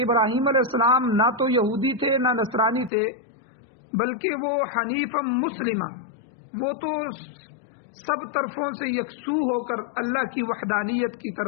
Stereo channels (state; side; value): drops out; right; at 2.9 s